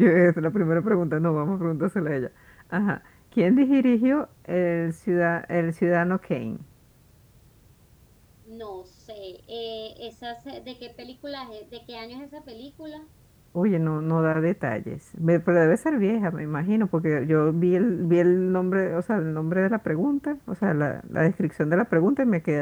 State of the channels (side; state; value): both; identical; correlation 1.00